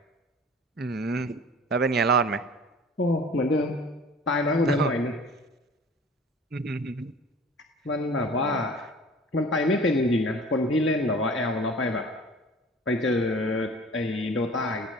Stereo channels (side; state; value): both; normal; correlation 0.44